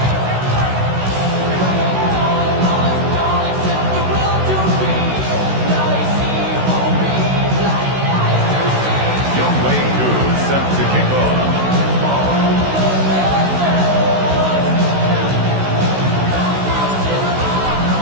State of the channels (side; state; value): left; late; 16 ms